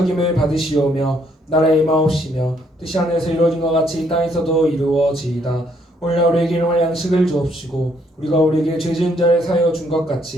받으시오며 나라의 임하옵시며 뜻이 하늘에서 이루어진 것 같이 이 땅에서도 이루어지이다. 오늘 우리에게 일용할 양식을 주옵시고 우리가 우리에게 죄 지은 자를 사하여 준 것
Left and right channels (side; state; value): both; normal; correlation 0.69